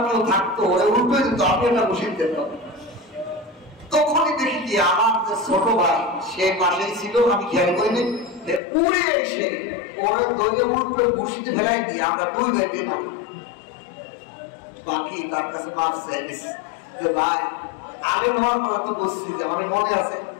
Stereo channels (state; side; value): drops out; right; at 8.6 s